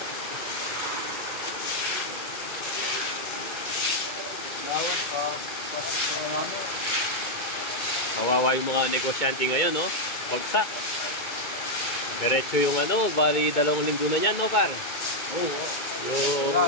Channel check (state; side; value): late; right; 2.2 ms